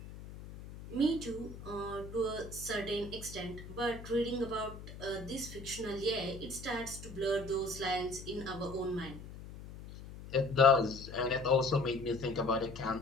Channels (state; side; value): noise; left; hum, 13 dB below the sound